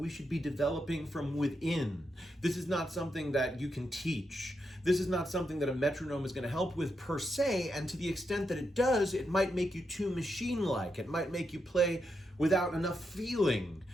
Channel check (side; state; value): both; normal; correlation 0.83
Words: should be developing from within. This is not something that you can teach. This is not something that a metronome is going to help with per se, and to the extent that it does, it might make you too machine-like. It might make you play without enough feeling.